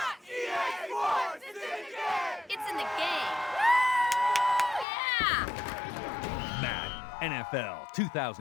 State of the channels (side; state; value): right; drops out; at 4.9 s